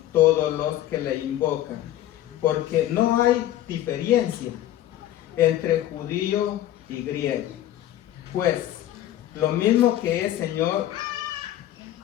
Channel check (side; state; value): right; quieter; 13.1 dB